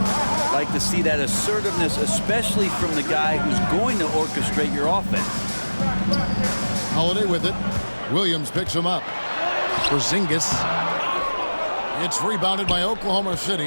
Like to see that assertiveness, especially from the guy who's going to orchestrate your offense. Holiday with it. Williams picks him up. Porzingis. It's rebounded by Oklahoma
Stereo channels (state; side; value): inverted; both; correlation -1.00